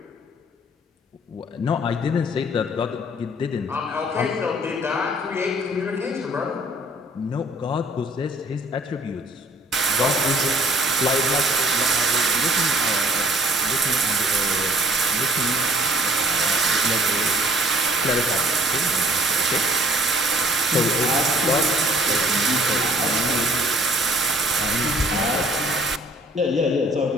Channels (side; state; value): both; normal; correlation 0.57